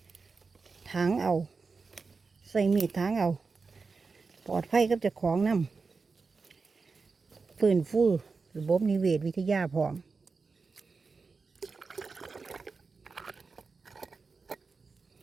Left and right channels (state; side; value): quieter; left; 4.5 dB